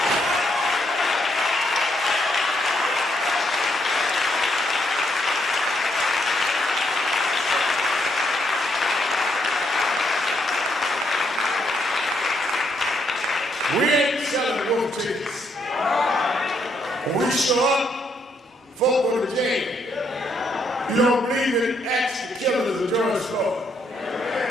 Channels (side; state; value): both; normal; correlation 0.74